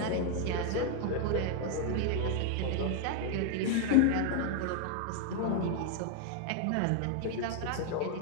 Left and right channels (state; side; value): different; both; correlation 0.00